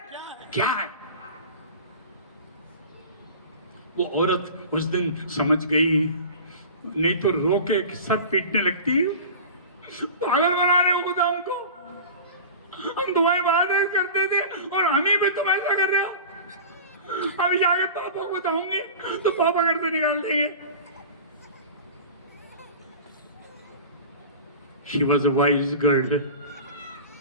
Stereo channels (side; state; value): both; inverted; correlation -0.35